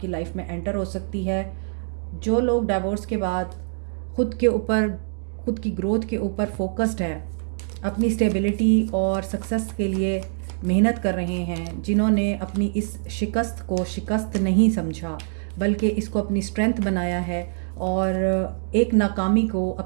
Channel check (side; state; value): left; silent; 62 dB below the other